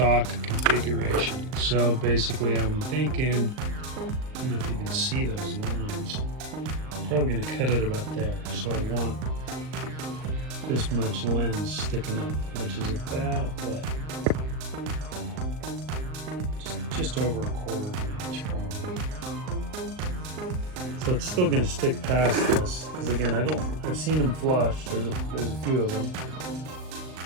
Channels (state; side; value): late; left; 38 ms